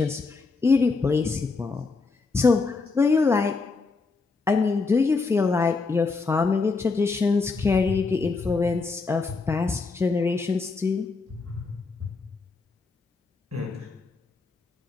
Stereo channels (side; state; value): right; quieter; 4.2 dB